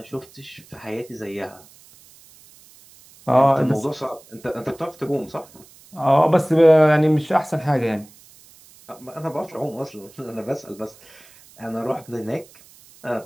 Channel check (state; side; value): noise; right; hiss, 25 dB below the sound